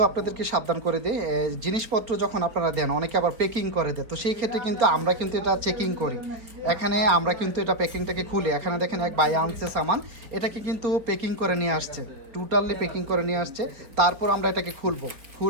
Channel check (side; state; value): left; late; 4.8 ms